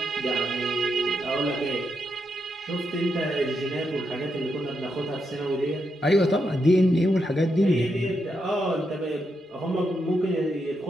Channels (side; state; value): both; normal; correlation 0.82